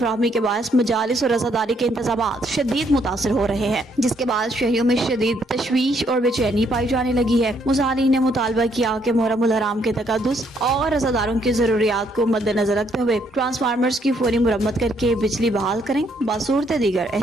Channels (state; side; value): normal; both; correlation 0.70